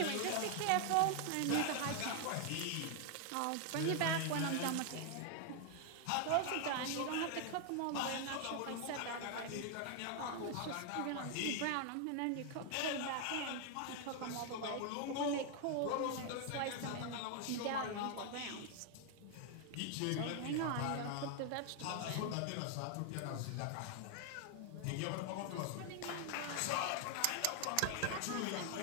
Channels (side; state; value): both; different; correlation 0.00